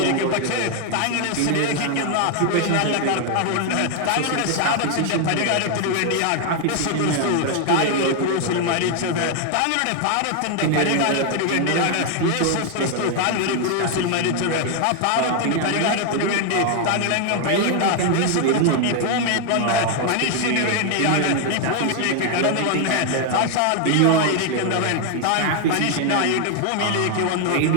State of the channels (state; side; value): different; both; correlation 0.00